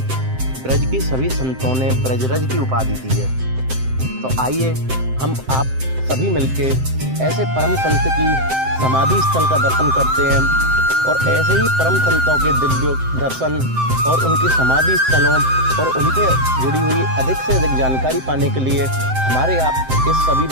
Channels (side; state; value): left; late; 7.7 ms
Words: ब्रज की सभी संतों ने ब्रजरज की उपाधि दी है। तो आइए हम आप सभी मिलके ऐसे परम संत की समाधि स्थल का दर्शन करते हैं और ऐसे ही परम संतों के दिव्य दर्शन और उनकी समाधि स्थलों और उनसे जुड़ी हुई अधिक से अधिक जानकारी पाने के लिए हमारे आप इस सभी